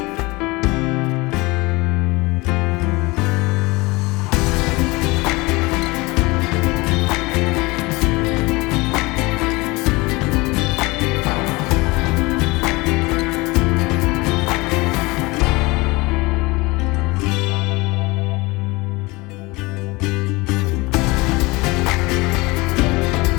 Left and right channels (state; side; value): quieter; right; 23.5 dB